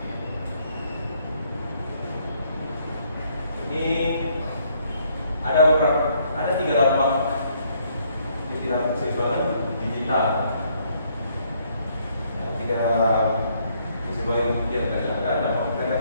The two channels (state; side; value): inverted; both; correlation -0.69